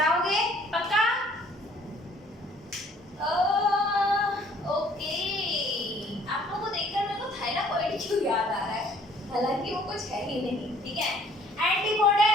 पक्का? ओके, आप लोगों को देखकर मेरे को थाइलाकोइड क्यों याद आ रहा है, हालांकि वो कुछ है ही नहीं, ठीक है?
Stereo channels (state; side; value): normal; both; correlation 0.59